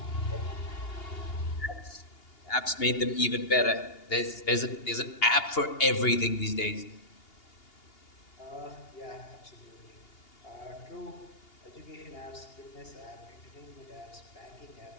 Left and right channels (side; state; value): right; late; 2.8 ms